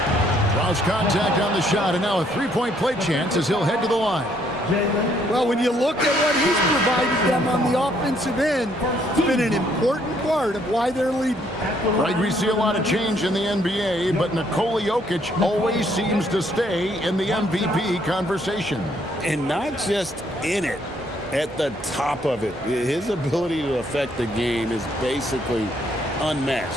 Draws contact on the shot, and now a three-point play chance as he'll head to the line. Well, when you look at what he's provided them on the offensive end, it's been an important part of why they're leading. Right, we see a lot of change in the NBA, but Nikola Jokic always seems to stay in the MVP conversation. And not just in it, at the top of it. His ability to affect the game is basically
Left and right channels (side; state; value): both; normal; correlation 0.68